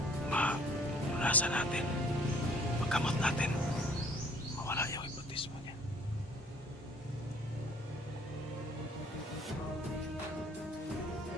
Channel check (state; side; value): normal; both; correlation 0.57